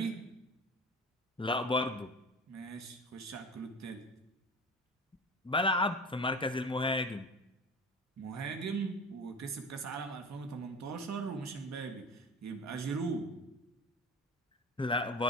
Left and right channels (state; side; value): normal; both; correlation 0.34